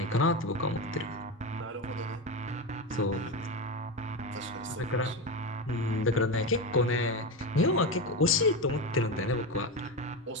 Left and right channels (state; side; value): normal; both; correlation 0.17